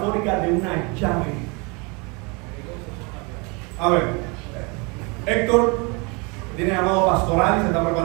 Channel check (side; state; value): left; quieter; 30.0 dB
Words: de una llave. A ver, Héctor tiene llamado pastoral y se está